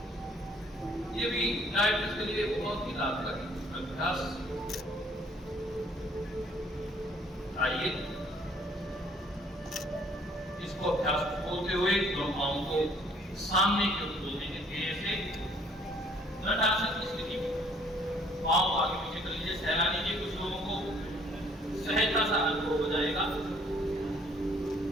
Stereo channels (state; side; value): normal; both; correlation 0.61